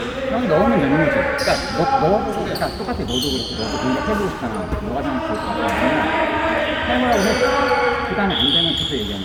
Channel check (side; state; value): both; identical; correlation 1.00